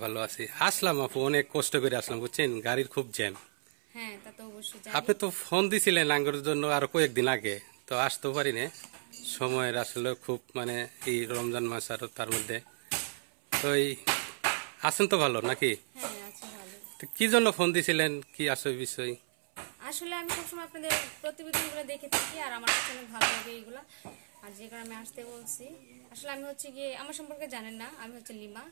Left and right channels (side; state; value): left; silent; 56 dB below the other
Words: ভালো আছি। আসলাম আপু, অনেক কষ্ট করে আসলাম, বুঝছেন, গাড়ির খুব জ্যাম। হ্যাঁ, তা তো অবশ্যই আপনি জানি। তো ফোন দিছিলেন আঙ্গুর জন্য আরো কয়েকদিন আগে, তো আসতেও পারি না। সময়ের আসলে খুব এই রমজান মাস আর তার মধ্যে তো আছেন তো ভালো নাকি? হ্যাঁ, আছি ভালো। তো কি জন্য ফোন দিছিলেন, কি আসলে বিষয়? আসলে আমি সবসময় আপনাদের প্রতিবেদনগুলো দেখে থাকি আর আমার কাছে অনেক ভালো লাগে এইগুলা। আর যে কারণে আমি আসতে বলছি। আসলে আমি হচ্ছে গিয়ে আমার সম্পর্কে জানেন না, আমি হচ্ছে লিমা।